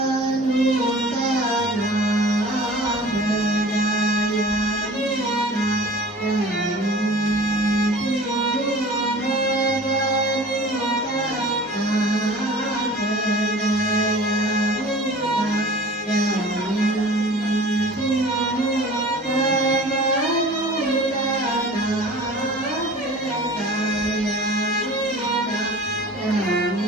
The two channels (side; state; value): both; normal; correlation 0.42